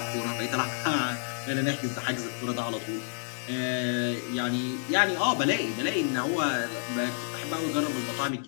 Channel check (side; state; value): right; silent; 58 dB below the other